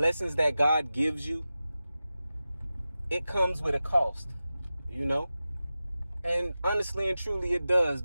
that God gives you, it comes with a cost, you know? And honestly and truly it does,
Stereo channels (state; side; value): inverted; both; correlation -0.94